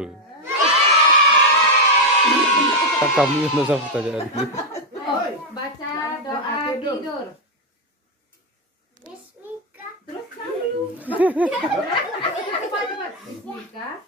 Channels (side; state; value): both; normal; correlation 0.04